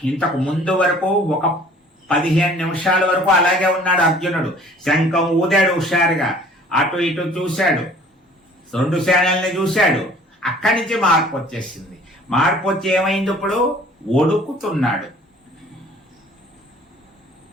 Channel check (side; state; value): both; normal; correlation 0.52